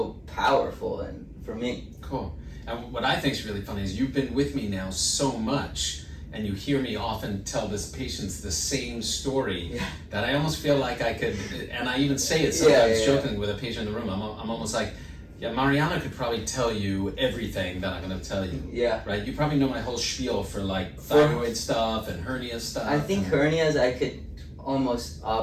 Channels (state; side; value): identical; both; correlation 1.00